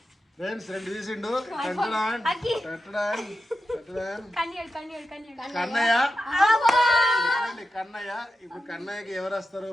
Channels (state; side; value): normal; both; correlation 0.90